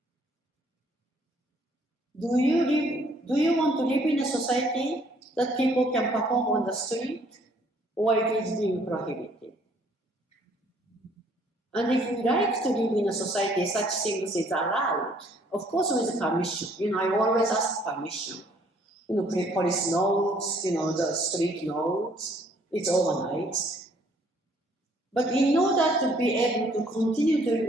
do you want to live in a society that people can perform on the street, or it is being prohibited? And if we like to live in a society such things is allowed, of course with permission. You know, I always ask permission. You know, police notes, you know, the street notes, it's organized. But in order to be able to continue to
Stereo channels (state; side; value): normal; both; correlation 0.62